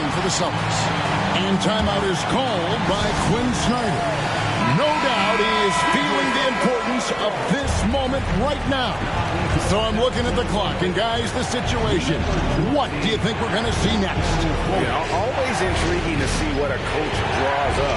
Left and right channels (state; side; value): identical; both; correlation 1.00